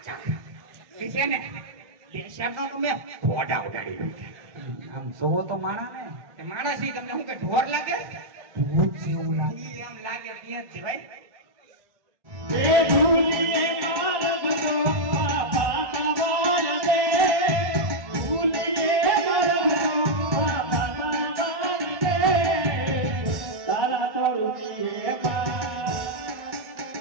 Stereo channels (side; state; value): left; late; 1.1 ms